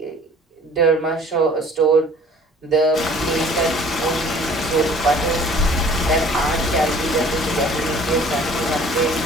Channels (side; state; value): both; normal; correlation 0.51